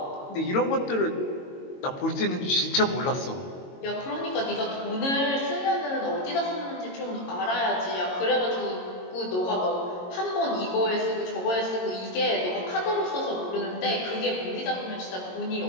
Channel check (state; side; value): late; right; 22 ms